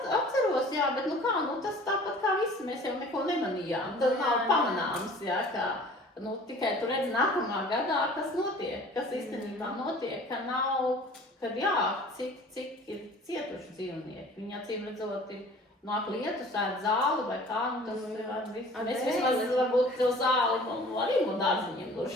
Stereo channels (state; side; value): normal; both; correlation 0.47